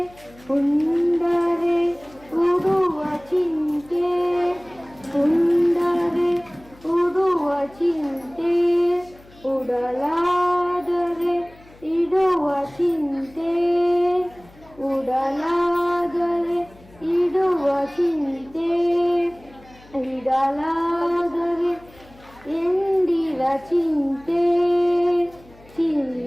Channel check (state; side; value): noise; left; hum, 25 dB below the sound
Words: ಉಂಡರೆ ಉಡುವ ಚಿಂತೆ, ಉಂಡರೆ ಉಡುವ ಚಿಂತೆ, ಉಡಲಾದರೆ ಇಡುವ ಚಿಂತೆ, ಉಡಲಾದರೆ ಇಡುವ ಚಿಂತೆ, ಇಡಲಾದರೆ ಎಂದಿರ ಚಿಂತೆ,